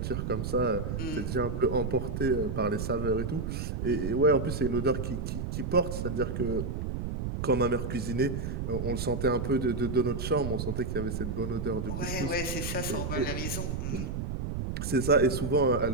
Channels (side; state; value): right; noise; rumble, 3 dB below the sound